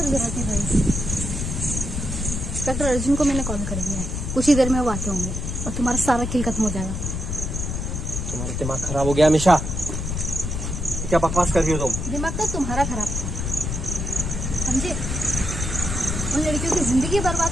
जरूरत नहीं भाई। इंस्पेक्टर अर्जुन को मैंने कॉल कर दिया है, कुछ ही देर में वो आते होंगे और तुम्हारा सारा खेल खत्म हो जाएगा। तुम्हारा दिमाग खराब हो गया हमेशा। क्या बकवास कर रही हो तुम? दिमाग तो तुम्हारा खराब था, समझे? उन लड़कियों की जिंदगी बर्बाद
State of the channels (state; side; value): noise; left; rumble, 3 dB below the sound